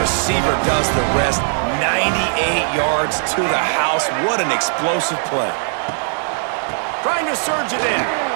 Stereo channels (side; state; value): left; silent; digital silence